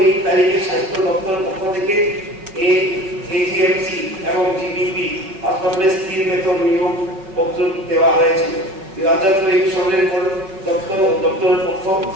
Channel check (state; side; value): late; left; 5.3 ms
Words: তারিখে স্বাস্থ্য দপ্তরের পক্ষ থেকে এজিএমসি এবং জিবিপি হাসপাতালে স্থির বেতন নিয়োগ পত্র দেওয়া হয়েছিল। 2023 সালের পর দপ্তরের পক্ষ